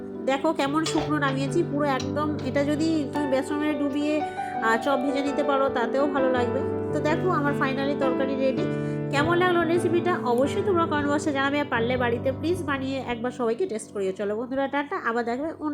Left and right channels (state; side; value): identical; both; correlation 1.00